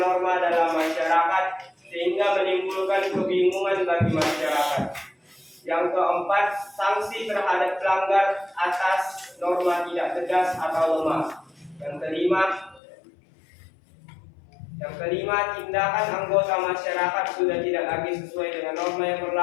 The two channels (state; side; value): drops out; right; at 12.8 s